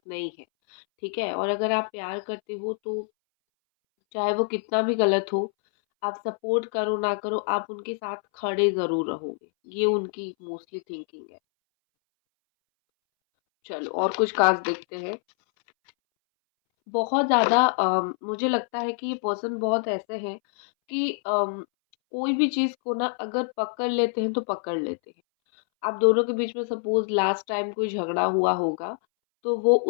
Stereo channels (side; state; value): right; silent; 61 dB below the other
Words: नहीं है, ठीक है? और अगर आप प्यार करते हो तो चाहे वो कितना भी गलत हो, आप सपोर्ट करो ना करो, आप उनके साथ खड़े ज़रूर रहोगे। ये उनकी मोस्टली थिंकिंग है। चलो और कुछ कार्ड्स देखते हैं। बहुत ज़्यादा मुझे लगता है कि ये पर्सन बहुत ऐसे हैं कि कोई भी चीज़ को ना अगर पकड़ लेते हैं तो पकड़ लेते हैं। आप दोनों के बीच में सपोज़ लास्ट टाइम कोई झगड़ा हुआ होगा तो वो